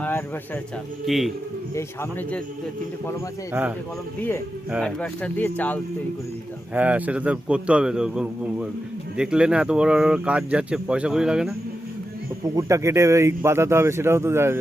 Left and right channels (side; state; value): both; normal; correlation 0.89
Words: অ্যাডভার্টার চাল কি এই সামনে যে তিনটে কলম আছে এই তিনটে কলম দিয়ে অ্যাডভার্টার দিয়ে চাল তৈরি করে দিতে হবে। হ্যাঁ সেটা তো করতে হবে তো, দেখলে না এত বড় বড় কাজ যাচ্ছে, পয়সা করি লাগে না? পুকুরটা কেটে ইট বাঁধাতে হবে, সেটাও তো